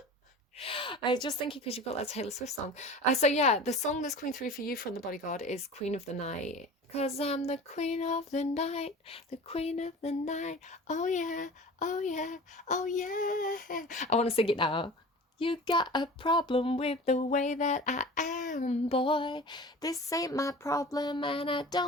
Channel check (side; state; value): both; normal; correlation 0.38